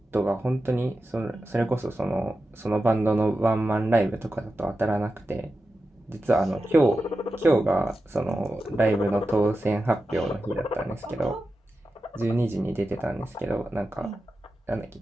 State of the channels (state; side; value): normal; both; correlation 0.92